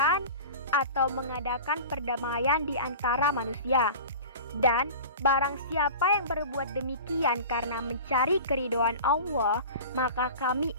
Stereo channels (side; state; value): both; inverted; correlation -0.35